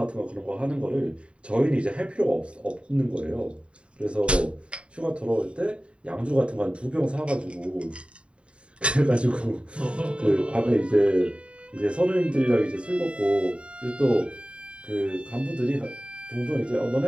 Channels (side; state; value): left; late; 0.058 ms